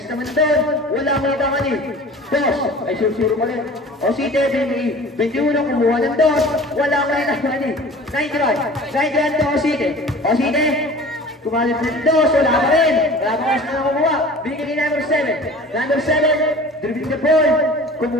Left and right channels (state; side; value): normal; both; correlation 0.42